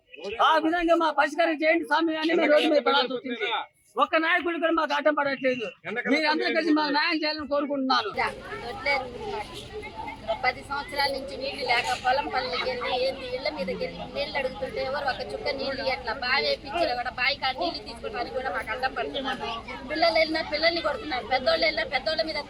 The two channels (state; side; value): identical; both; correlation 1.00